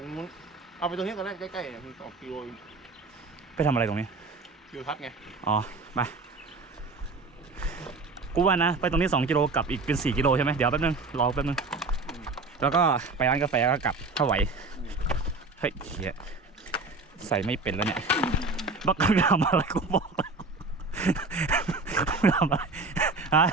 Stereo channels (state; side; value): quieter; left; 3.6 dB